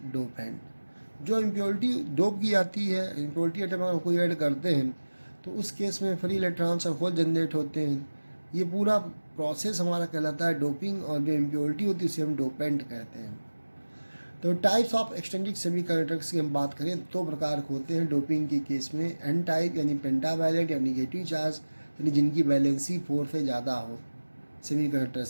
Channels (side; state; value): both; inverted; correlation -1.00